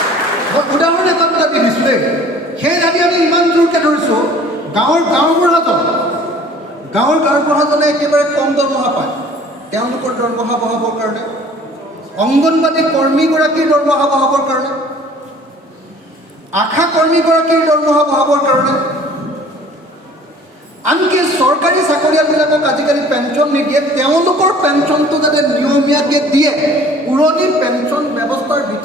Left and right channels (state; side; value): normal; both; correlation 0.50